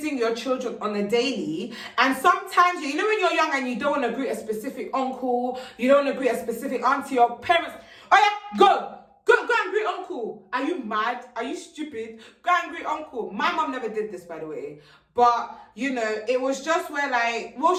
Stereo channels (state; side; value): identical; both; correlation 1.00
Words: your children on a daily. And sometimes, you know, when you're young and you don't want to greet a specific uncle, you don't want to greet a specific auntie or parents, oh yeah, go and greet uncle. Are you mad? Are you stupid? Go and greet uncle. My mom never did this, by the way. But, you know, it was just where, like, well,